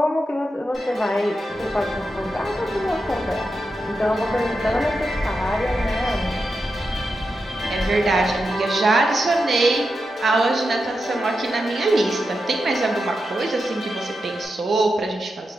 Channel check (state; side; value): normal; both; correlation 0.88